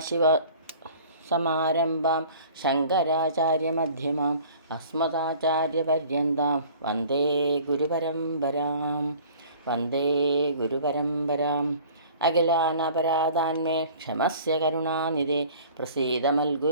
സമാരംഭാം ശങ്കരാചാര്യമധ്യമാം അസ്മദാചാര്യപര്യന്താം വന്ദേ ഗുരുപരമ്പരാം. അഖിലാനപരാധാന്മേ ക്ഷമസ്യ കരുണാനിധേ പ്രസീദ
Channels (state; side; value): inverted; both; correlation -0.48